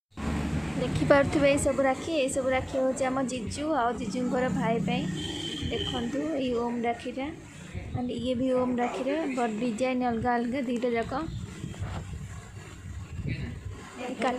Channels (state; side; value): identical; both; correlation 1.00